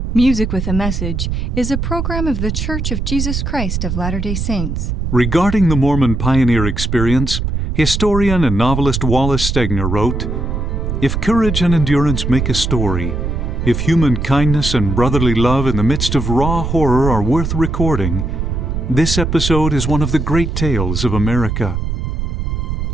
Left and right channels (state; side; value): noise; right; rumble, 2 dB below the sound